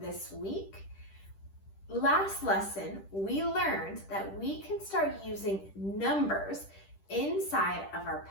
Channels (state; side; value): late; right; 10 ms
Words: week. Last lesson, we learned that we can start using numbers inside of our